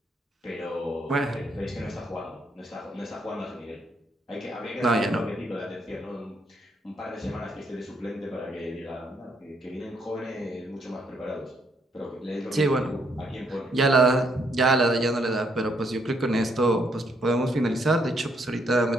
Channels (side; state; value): both; normal; correlation 0.72